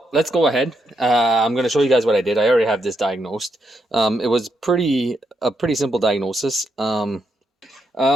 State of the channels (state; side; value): normal; both; correlation 0.80